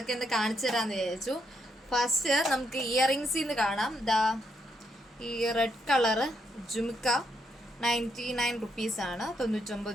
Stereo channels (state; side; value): normal; both; correlation 0.78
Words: ഒന്ന് കാണിച്ചു തരാമെന്ന് വിചാരിച്ചു. ഫസ്റ്റ് നമുക്ക് ഇയറിങ്സിൽ നിന്ന് കാണാം. ഈ റെഡ് കളറ് ജുംക്ക 99 റുപ്പീസാണ്,